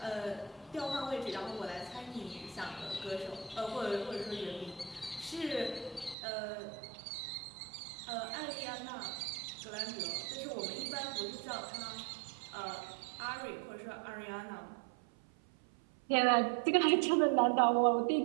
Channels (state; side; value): drops out; left; at 6.2 s